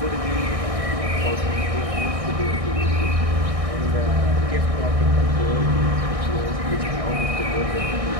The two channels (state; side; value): late; left; 1.6 ms